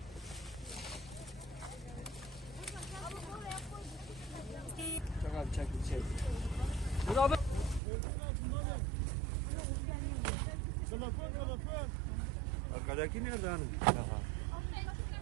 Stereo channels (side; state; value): left; drops out; at 7.8 s